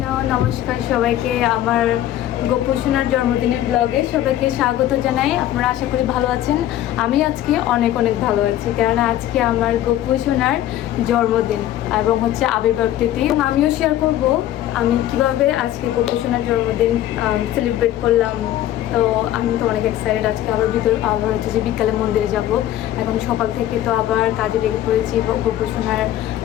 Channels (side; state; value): right; quieter; 12.8 dB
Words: নমস্কার সবাইকে। আমার গোপু সোনার জন্মদিনের ব্লগে সবাইকে স্বাগত জানাই। আপনারা আশা করি ভালো আছেন। আমি আজকে অনেক অনেক ভালো আছি, কেননা আজকে আমার গোপু সোনার জন্মদিন এবং হচ্ছে আবির্ভাব তিথি। আমিও শেয়ার করব আমি কিভাবে আজকে গোপু সোনার জন্মদিন সেলিব্রেট করলাম। তো আমি তো অনেক এক্সাইটেড। আজকে আবার হচ্ছে যে বিকালে মন্দিরে যাব। এখন সকাল থেকে তো আবার কাজে লেগে পড়েছি, গোপু সোনার